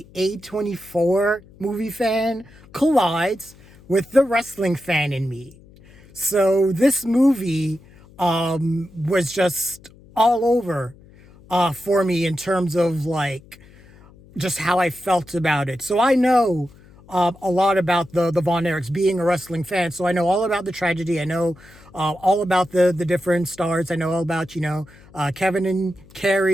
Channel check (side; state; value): left; noise; hum, 24 dB below the sound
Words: A24 movie fan, collides with the wrestling fan in me. So this movie was just all over for me in terms of like just how I felt about it. So I know a lot about the Von Erichs, being a wrestling fan. So I know all about the tragedy. I know all about the different stars. I know all about, Kevin and